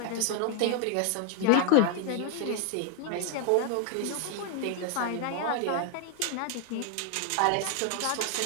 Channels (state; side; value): different; both; correlation 0.00